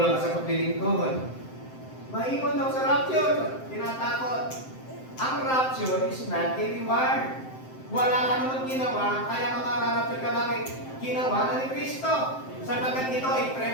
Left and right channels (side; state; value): right; late; 7.7 ms